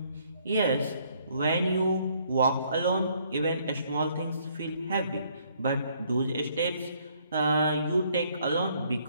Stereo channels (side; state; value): both; inverted; correlation -0.66